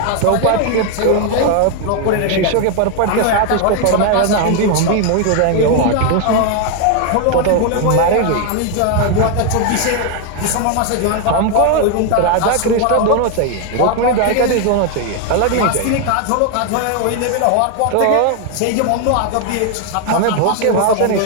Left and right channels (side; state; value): both; different; correlation 0.01